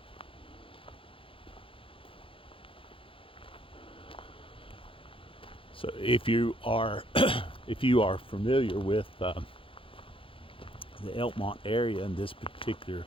So if you are if you are familiar with the Elkmont area and this particular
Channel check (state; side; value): late; right; 0.26 ms